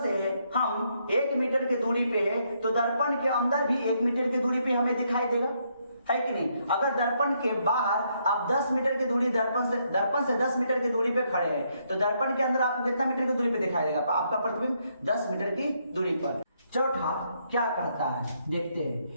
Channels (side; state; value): both; inverted; correlation -0.75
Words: से हम 1 मीटर की दूरी पे है तो दर्पण के अंदर भी 1 मीटर की दूरी पे हमें दिखाई देगा, है कि नहीं? अगर दर्पण के बाहर आप 10 मीटर की दूरी दर्पण से 10 मीटर की दूरी पे खड़े हैं तो दर्पण के अंदर आपको कितना मीटर की दूरी पे दिखाई देगा? आपका प्रतिबिंब 10 मीटर की दूरी पर। चौथा क्या कहता है देखते